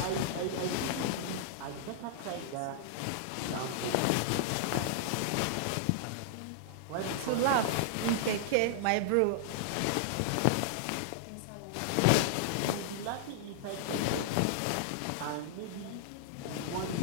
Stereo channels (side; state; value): both; different; correlation -0.01